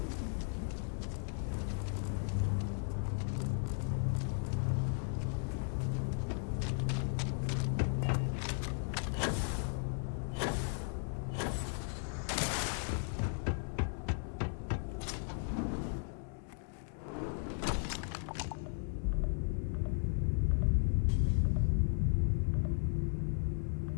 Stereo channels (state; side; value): silent; right; 54 dB below the other